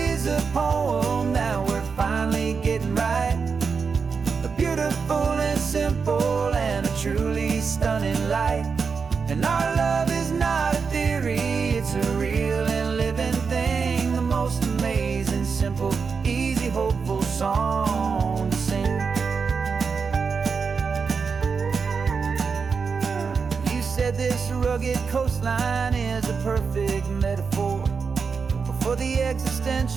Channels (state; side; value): quieter; left; 5.4 dB